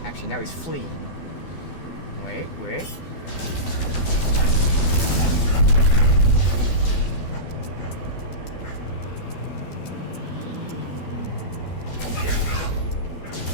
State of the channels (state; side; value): late; right; 12 ms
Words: Actually, now he's fleeing. Wait, wait.